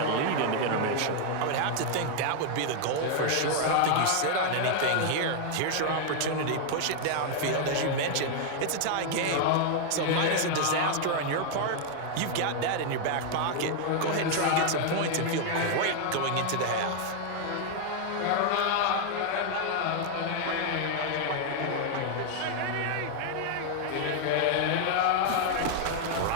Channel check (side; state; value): both; different; correlation 0.00